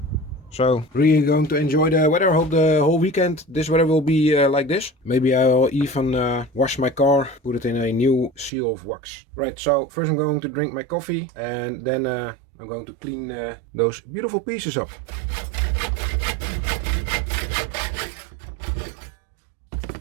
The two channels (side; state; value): left; drops out; at 8.5 s